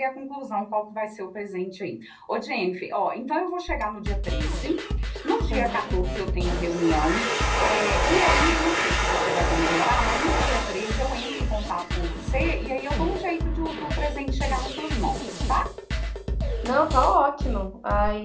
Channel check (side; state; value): both; identical; correlation 1.00